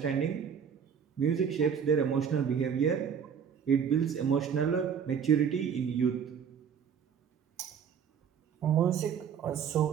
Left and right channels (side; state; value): left; quieter; 7.4 dB